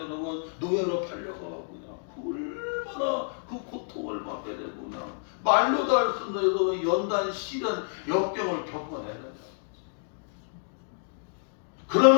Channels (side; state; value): right; silent; digital silence